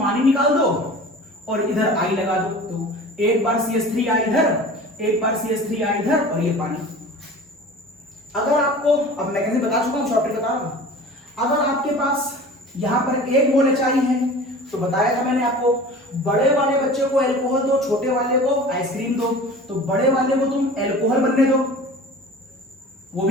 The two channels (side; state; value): both; normal; correlation 0.40